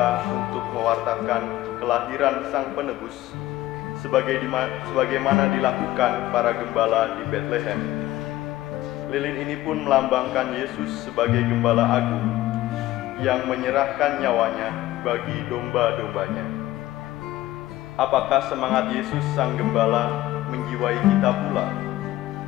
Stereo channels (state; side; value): quieter; right; 15.8 dB